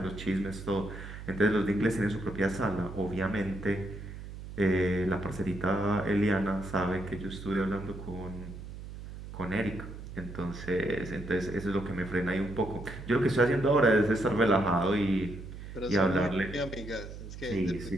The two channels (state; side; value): noise; right; hum, 11 dB below the sound